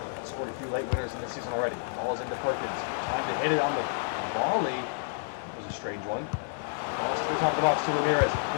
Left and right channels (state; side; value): silent; right; digital silence